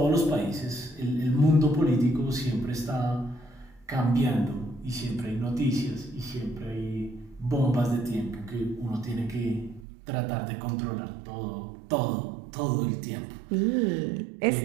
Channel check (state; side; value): drops out; left; at 9.9 s